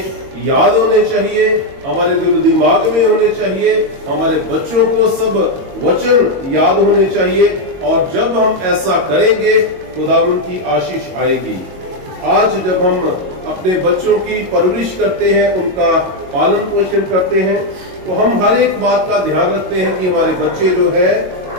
याद होने चाहिए, हमारे दिल दिमाग में होने चाहिए, हमारे बच्चों को सब वचन याद होने चाहिए और जब हम ऐसा करेंगे खुदावन की आशीष आएगी। आज जब हम अपने बच्चों की परवरिश करते हैं, उनका पालन पोषण करते हैं, तो हम हर एक बात का ध्यान रखते हैं कि हमारे बच्चे जो है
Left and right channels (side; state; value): left; late; 22 ms